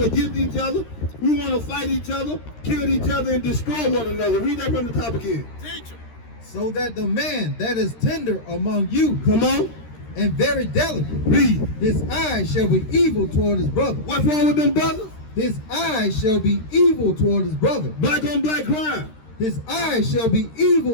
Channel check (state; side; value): late; right; 13 ms